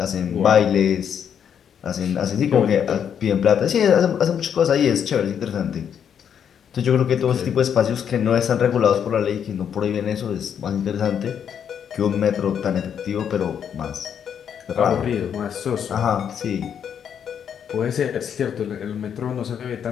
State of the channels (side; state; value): right; quieter; 8.2 dB